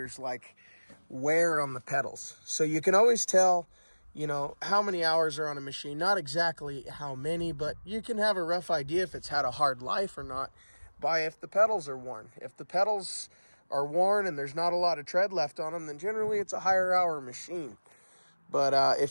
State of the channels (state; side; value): inverted; both; correlation -1.00